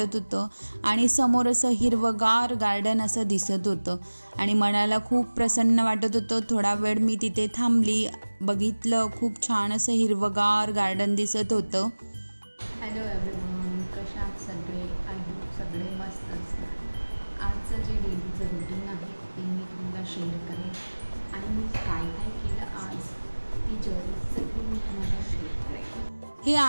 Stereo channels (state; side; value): inverted; both; correlation -1.00